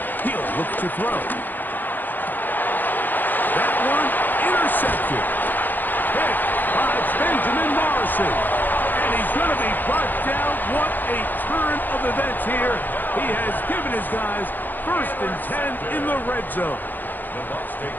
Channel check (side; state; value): right; late; 0.088 ms